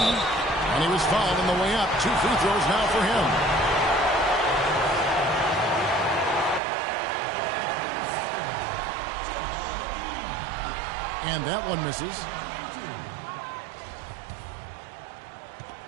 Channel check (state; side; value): drops out; left; at 6.6 s